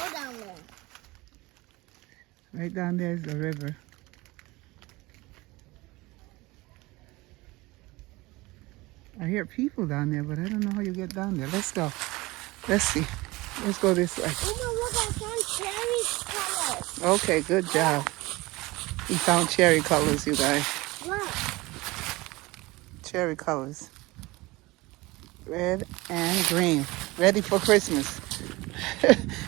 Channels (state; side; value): quieter; left; 21.6 dB